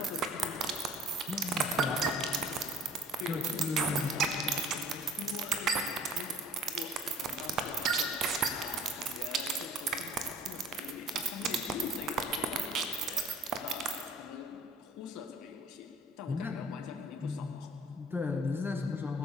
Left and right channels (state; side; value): normal; both; correlation 0.51